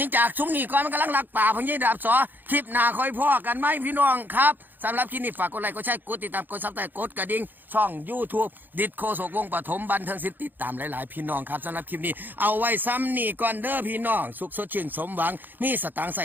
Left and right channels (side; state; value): left; late; 0.089 ms